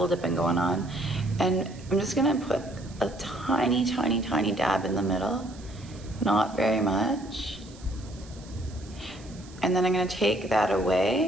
dipping going on. And I'm just gonna put a tiny, tiny, tiny dab in the middle, not very much. And then I'm gonna take that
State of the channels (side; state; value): right; noise; hiss, 22 dB below the sound